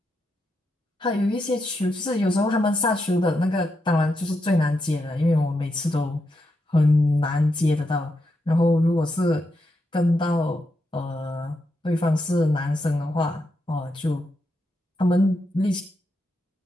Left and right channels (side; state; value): both; normal; correlation 0.83